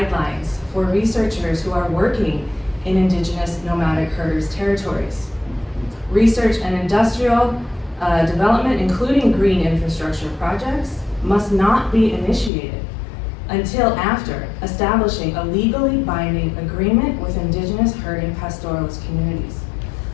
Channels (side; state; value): right; drops out; at 12.5 s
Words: for researchers who are working in Indigenous nomadic herders' territories. Research and industrial development, including green infrastructure projects, must not be initiated until after establishing a legally binding agreement with Indigenous herding pastoralist communities.